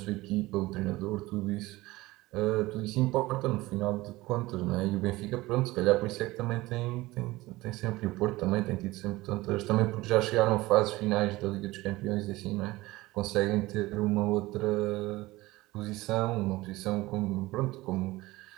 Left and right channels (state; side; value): quieter; left; 19.5 dB